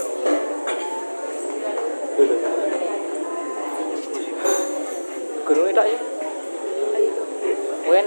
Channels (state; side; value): inverted; both; correlation -1.00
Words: Guru itu ya. Kowe